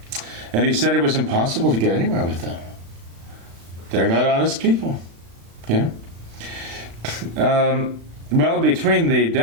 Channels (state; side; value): late; left; 36 ms